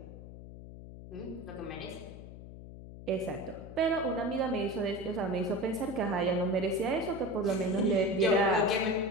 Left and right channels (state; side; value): noise; left; hum, 14 dB below the sound